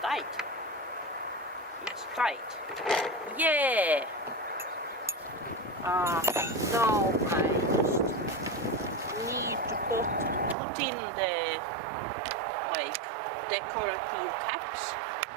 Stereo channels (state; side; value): drops out; left; at 10.6 s